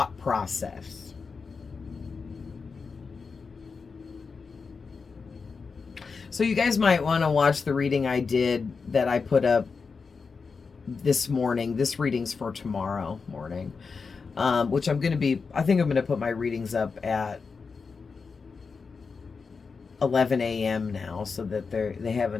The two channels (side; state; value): right; quieter; 5.0 dB